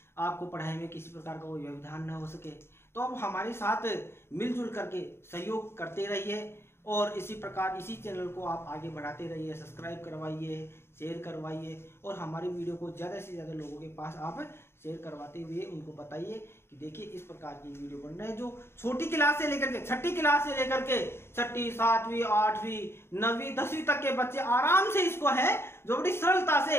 आपको पढ़ाई में किसी प्रकार का कोई व्यवधान न हो सके। तो आप हमारे साथ मिलजुल करके सहयोग करते रहिए और इसी प्रकार इसी चैनल को आप आगे बढ़ाते रहिए, सब्सक्राइब करवाइए, शेयर करवाइए और हमारी वीडियो को ज़्यादा से ज़्यादा लोगों के पास आप शेयर करवाते हुए उनको बताइए कि देखिए इस प्रकार की वीडियो बन रहे हैं जो छोटी क्लास से लेकर के छठी क्लास से लेकर के 6ठी, 7वीं, 8वीं, 9वीं, 10वीं तक के बच्चे आराम से इसको है जो बड़ी सरलता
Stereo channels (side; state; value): right; late; 0.12 ms